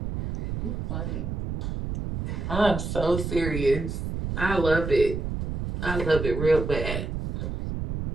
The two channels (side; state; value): right; noise; rumble, 4 dB below the sound